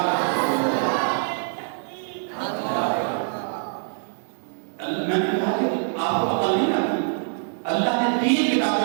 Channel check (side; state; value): left; silent; digital silence